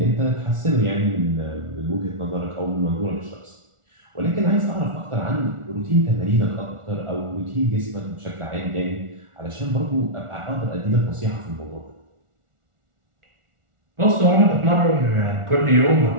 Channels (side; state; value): left; late; 1.4 ms